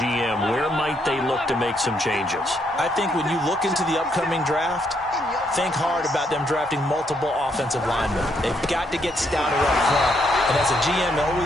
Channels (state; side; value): normal; both; correlation 0.74